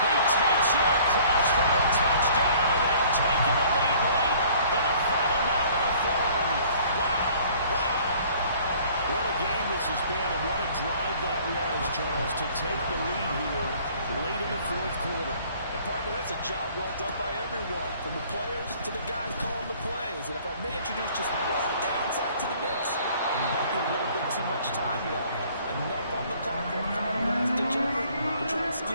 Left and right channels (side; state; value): both; inverted; correlation -0.55